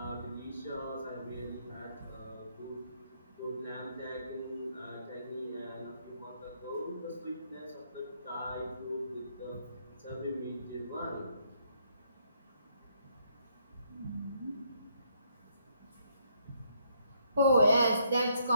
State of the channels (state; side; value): inverted; both; correlation -0.71